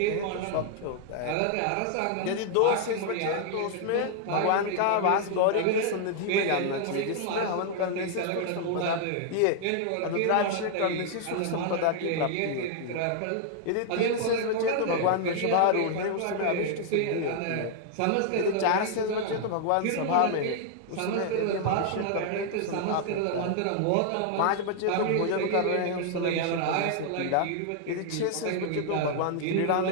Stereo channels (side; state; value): both; different; correlation 0.00